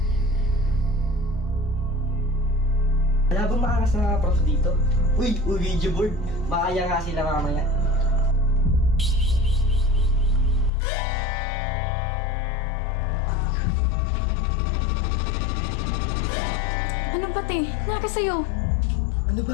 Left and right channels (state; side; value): drops out; right; at 10.7 s